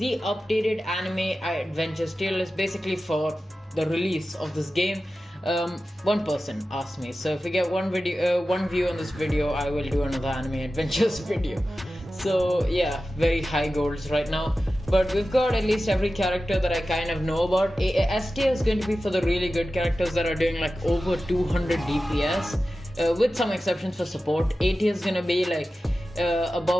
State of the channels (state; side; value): normal; both; correlation 0.94